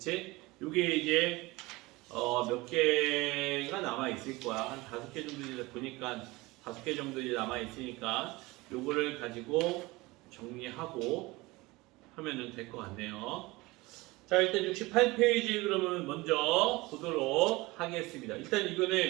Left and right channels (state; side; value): quieter; left; 21.9 dB